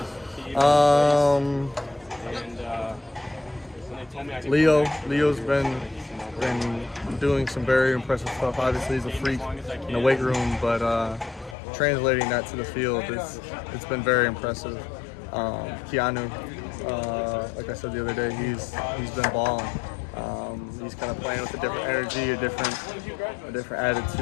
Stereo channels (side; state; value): right; drops out; at 11.6 s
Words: Leo's been doing some very impressive stuff. Obviously, he's a freak in the weight room, but translating that to the field, it's been very impressive. Keanu, like I said the other day, he's been balling. He's kind of playing with a different energy, a different